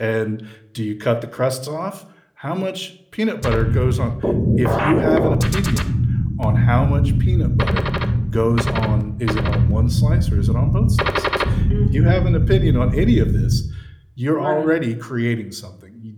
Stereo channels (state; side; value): identical; both; correlation 1.00